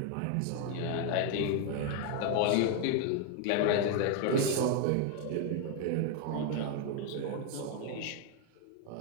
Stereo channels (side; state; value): both; different; correlation 0.01